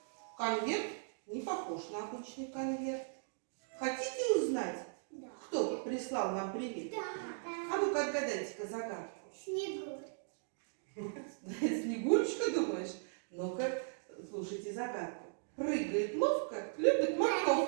конверт не похож на обычный конверт. Хотите узнать, Да. кто прислал нам привет? Да. А ну-ка отгадайте-ка загадку. Снегурь. Снегурочка, думаешь? Ну-ка, слушайте загадку. Прыгает ловко, любит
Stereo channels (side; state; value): left; silent; digital silence